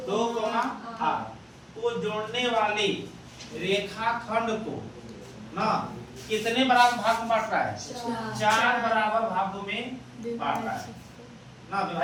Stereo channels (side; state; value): both; identical; correlation 1.00